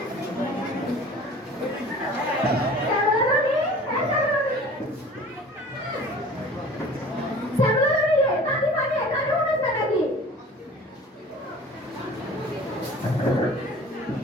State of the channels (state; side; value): normal; both; correlation 0.44